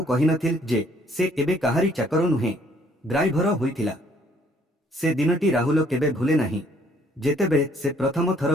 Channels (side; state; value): both; normal; correlation 0.63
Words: କହିନଥିଲା ଯେ ସେ ଏବେ କାହାରି ଚାକର ନୁହେଁ, ଡ୍ରାଇଭର ହୋଇଥିଲା। ସେ ଦିନଟି ରାହୁଲ କେବେ ଭୁଲେ ନାହିଁ, ଯେତେବେଳେ ସେ ପ୍ରଥମ ଥର